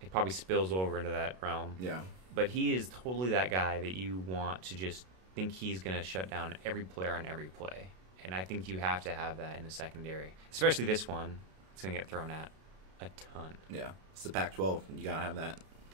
It probably spills over into that realm. Yeah. But he is totally that guy that you want to just think he's going to shut down every player on every play. And I think you have to have that in the secondary, especially this one. It's going to get thrown at a ton. Yeah. It's the Pac-12. You got to have that.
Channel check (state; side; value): late; left; 32 ms